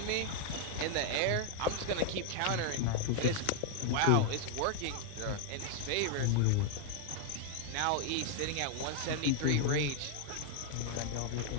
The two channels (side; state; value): both; different; correlation 0.00